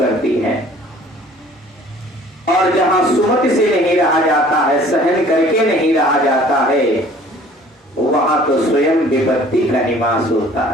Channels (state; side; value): normal; both; correlation 0.52